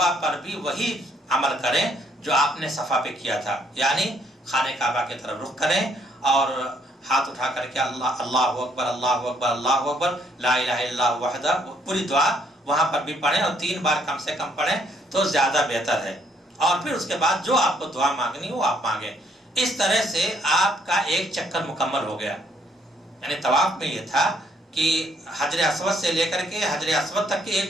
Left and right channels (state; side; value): normal; both; correlation 0.68